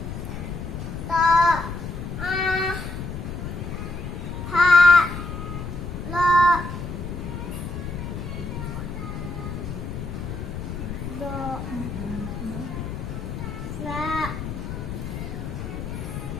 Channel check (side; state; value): left; noise; rumble, 6 dB below the sound